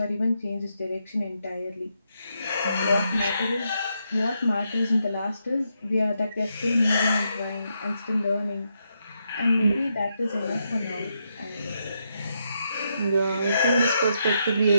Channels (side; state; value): both; inverted; correlation -0.80